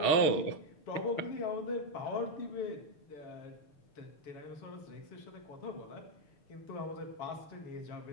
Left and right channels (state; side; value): late; right; 6.7 ms